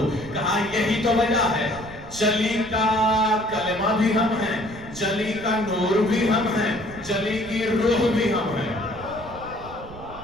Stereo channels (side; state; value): right; noise; rumble, 16 dB below the sound